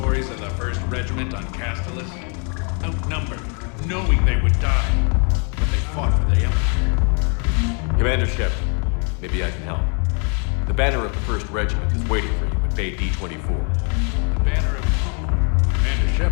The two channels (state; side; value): quieter; right; 38.2 dB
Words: of the 1st Regiment on Castellus? Outnumbered, knowing they would die, but they fought for the Empire. Commander Shepard, maybe I can help. The banner of the 1st Regiment is waiting for you at Bay D-24. The banner of... Commander